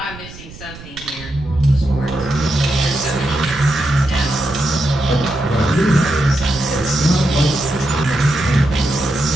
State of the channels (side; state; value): right; noise; rumble, 16 dB below the sound